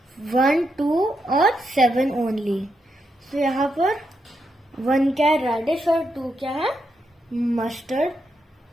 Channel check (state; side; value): normal; both; correlation 0.82